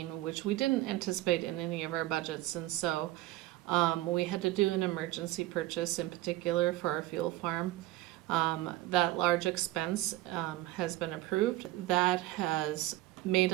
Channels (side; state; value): left; quieter; 16.3 dB